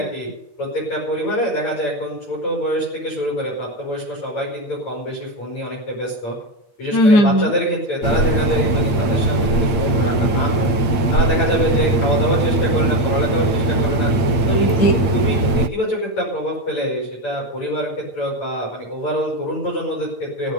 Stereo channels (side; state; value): right; late; 8.7 ms